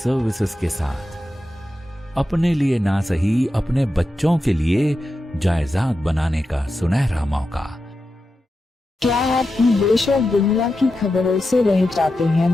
के साथ। अपने लिए ना सही, अपने बच्चों के लिए जायदाद बनाने का सुनहरा मौका। क्या आप देश और दुनिया की खबरों से रह जाते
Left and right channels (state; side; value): normal; both; correlation 0.90